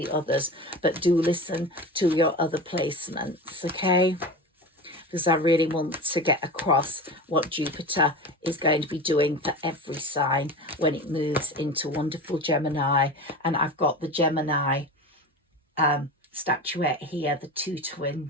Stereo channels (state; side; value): normal; both; correlation 0.29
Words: others, but do listen to your other placements, okay? Because I really want to get across what Jupiter is going to be doing for every sign when it moves into wonderful Gemini. And I've got the Gemini statuette here, the 2